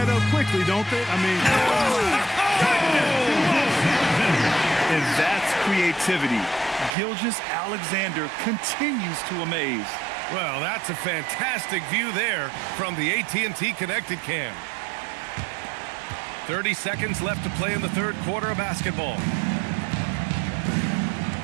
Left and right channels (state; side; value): drops out; left; at 7.0 s